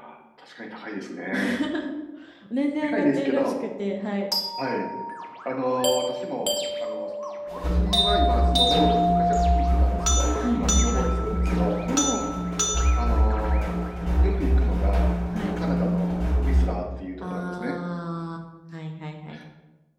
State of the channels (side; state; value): both; identical; correlation 1.00